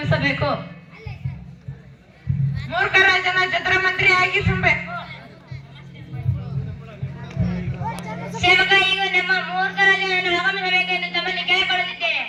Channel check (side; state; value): both; identical; correlation 1.00